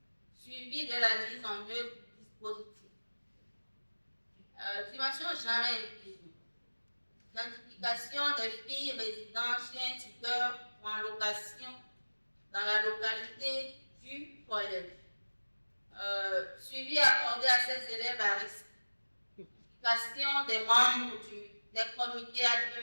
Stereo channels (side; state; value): both; inverted; correlation -1.00